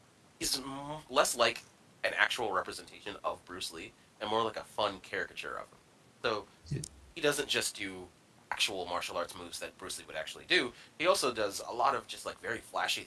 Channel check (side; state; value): both; identical; correlation 1.00